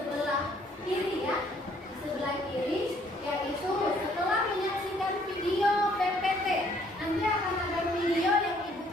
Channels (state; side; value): normal; both; correlation 0.63